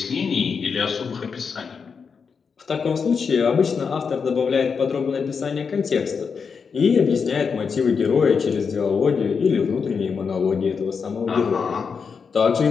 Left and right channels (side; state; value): right; quieter; 5.8 dB